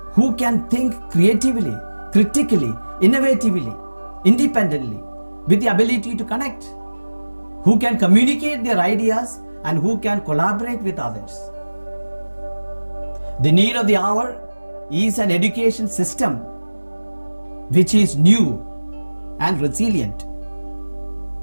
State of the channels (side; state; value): both; inverted; correlation -1.00